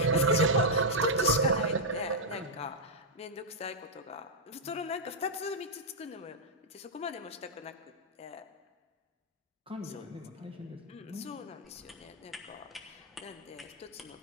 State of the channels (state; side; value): normal; both; correlation -0.06